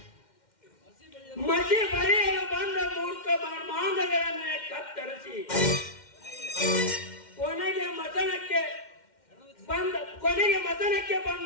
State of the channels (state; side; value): late; right; 2.1 ms